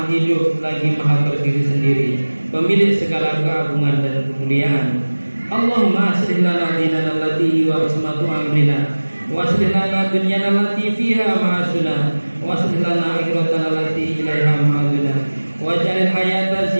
hidup lagi maha berdiri sendiri, pemilik segala keagungan dan kemuliaan. Allahumma aslih lana dinana allati wa ismatu amrina wa aslih lana dunyana allati fiha ma'asuna wa aslih lana akhiratana allati ilaiha ma'aduna waj'alil hayata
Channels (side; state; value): both; inverted; correlation -1.00